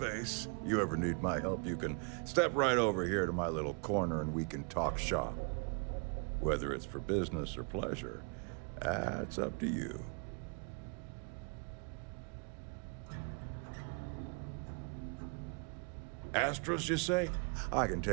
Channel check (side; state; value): left; quieter; 38.0 dB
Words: You ever need my help, you can step right over here to my little corner and we can talk shop. Whether it's for business or pleasure, that's up to you. Astros, you say? I can